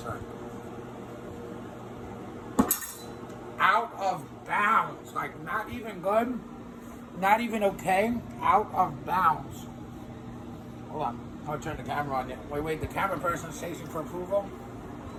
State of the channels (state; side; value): identical; both; correlation 1.00